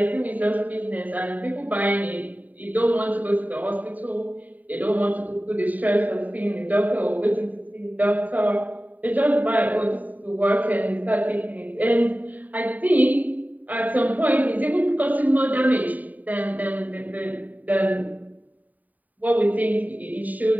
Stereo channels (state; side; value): late; left; 0.078 ms